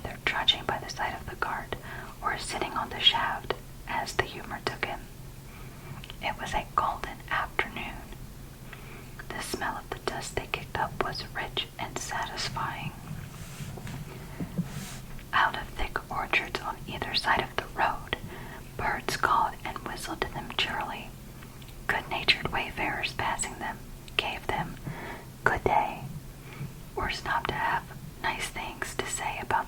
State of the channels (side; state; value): both; identical; correlation 1.00